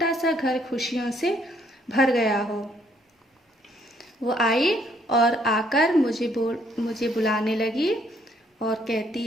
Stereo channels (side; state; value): both; normal; correlation 0.67